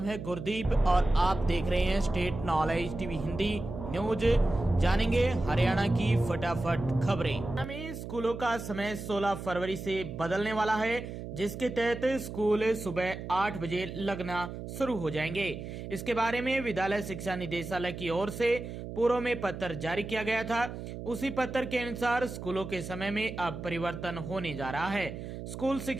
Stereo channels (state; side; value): noise; right; hum, 9 dB below the sound